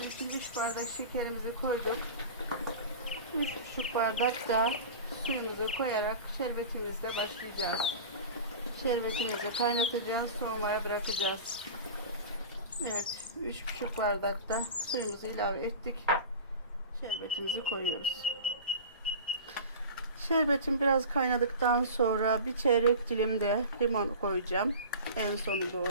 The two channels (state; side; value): inverted; both; correlation -0.34